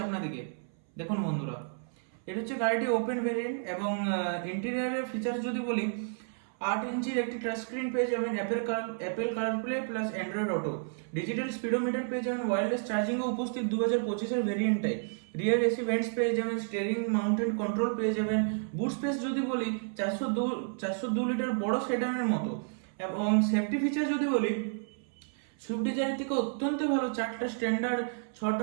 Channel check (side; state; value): left; silent; 57 dB below the other